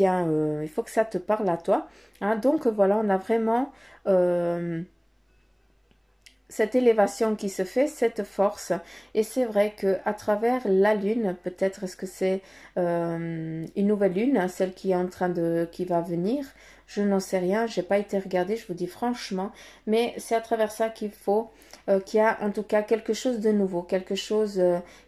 faut que ça te parle à toi, donc voilà, on a vraiment cette élévation qui se fait, cette force. Et c'est vrai que à travers la lune, peut-être est-ce que c'est une nouvelle lune, celle qui est en train qui va venir, je n'en sais rien, j'ai pas été regarder, je vous dis franchement, mais c'est à travers ça qu'il faut qu'il y a en tout cas quelque chose de nouveau, quelque chose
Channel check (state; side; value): identical; both; correlation 1.00